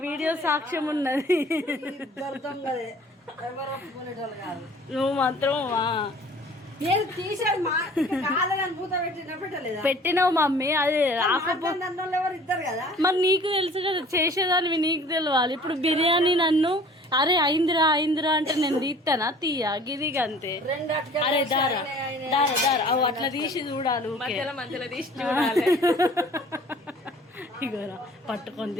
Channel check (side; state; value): both; normal; correlation 0.49